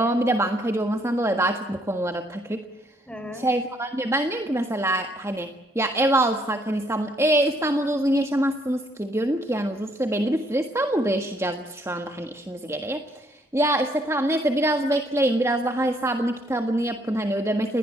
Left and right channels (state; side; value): normal; both; correlation 0.68